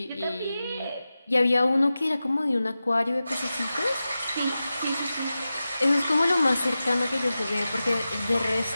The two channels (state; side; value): inverted; both; correlation -0.94